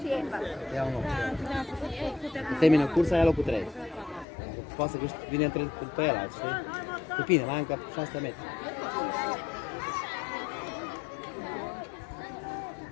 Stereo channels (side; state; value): right; drops out; at 4.2 s